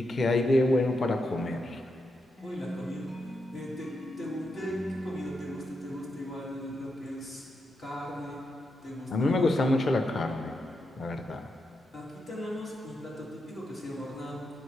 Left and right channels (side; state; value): both; normal; correlation 0.85